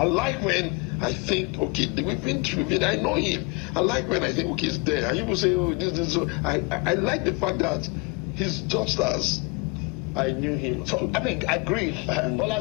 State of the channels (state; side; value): quieter; right; 28.8 dB